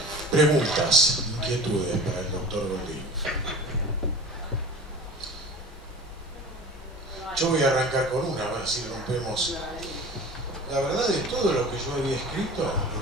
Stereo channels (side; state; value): both; normal; correlation 0.38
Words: Preguntas, inquietudes para el doctor Goldín. Yo voy a arrancar con una, a ver si rompemos. La verdad de todo lo que yo había escrito,